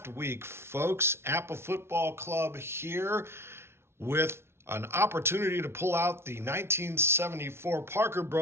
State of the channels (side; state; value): left; late; 0.12 ms